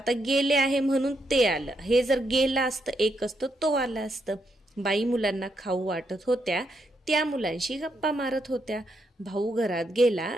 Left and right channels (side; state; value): both; normal; correlation 0.79